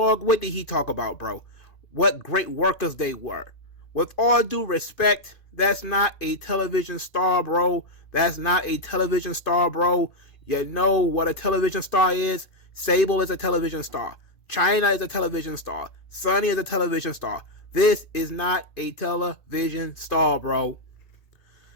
what did he talk about, bro? What great workers they were. With all due respect, that's not a television star, bro. That's not a television star, bro. You know what a television star is? Sable is a television star. China is a television star. Sunny is a television star. This is not a television star, bro.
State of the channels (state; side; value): late; right; 2.5 ms